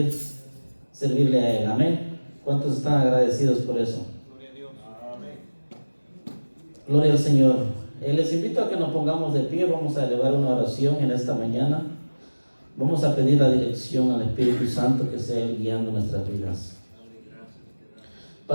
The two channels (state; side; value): inverted; both; correlation -1.00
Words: a Él. Amén. ¿Cuántos están agradecidos por eso? Gloria a Dios. Gloria al Señor. Les invito a que nos pongamos de pie. Vamos a elevar una oración en esta mañana. Vamos a pedir la dirección al Espíritu Santo que sea Él guiando nuestras vidas.